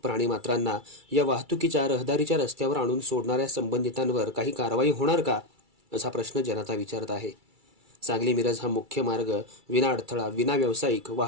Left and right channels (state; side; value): late; left; 2.3 ms